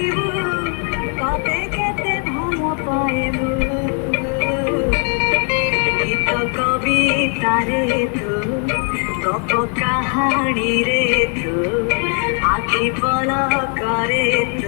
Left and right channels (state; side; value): quieter; right; 34.0 dB